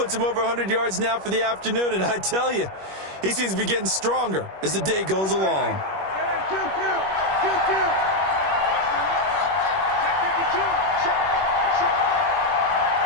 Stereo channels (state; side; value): late; left; 21 ms